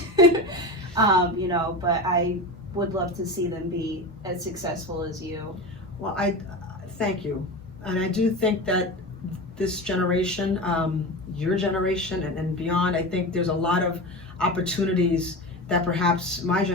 You know, but I would love to see them be as successful as you. Well, I thank you. And I do think that this generation, your generation and beyond, I think there's a lot of opportunities that perhaps my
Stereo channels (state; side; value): normal; both; correlation 0.26